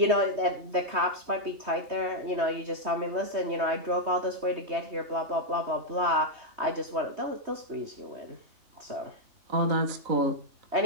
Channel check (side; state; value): left; late; 3.2 ms